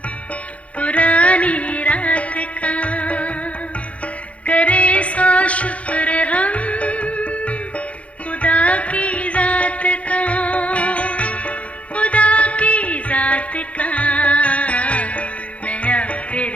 पुरानी रात का, करे सौ शुक्र हम खुदा की जात का, खुदा की जात का, नया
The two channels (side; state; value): right; late; 0.064 ms